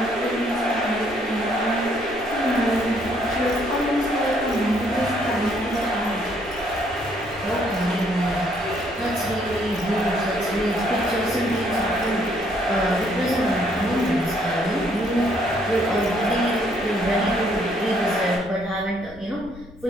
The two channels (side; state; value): left; noise; rumble, 19 dB below the sound